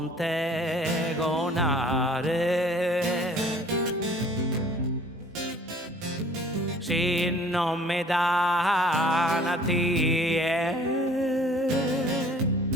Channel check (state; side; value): normal; both; correlation 0.52